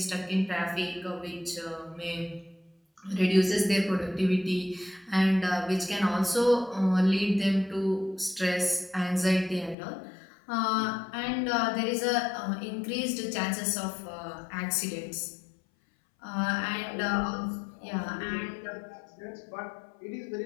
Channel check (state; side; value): drops out; right; at 9.8 s